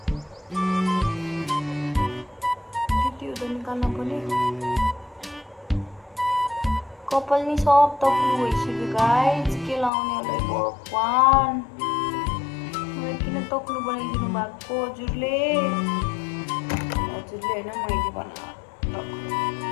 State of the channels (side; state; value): right; drops out; at 9.9 s